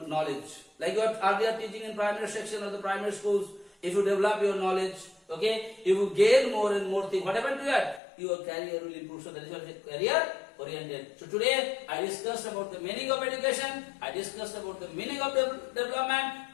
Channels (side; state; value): right; drops out; at 8.0 s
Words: knowledge, like you are teaching in primary section of the primary schools, if you develop your knowledge, okay, if you gain more and more things, what happened to that? Your career will improve. So that is what is career oriented. So today I discussed about the meaning of education, I discussed about the meaning of development,